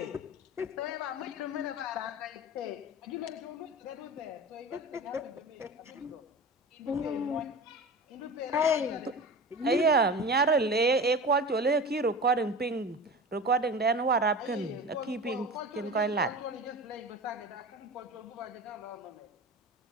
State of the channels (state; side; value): normal; both; correlation 0.32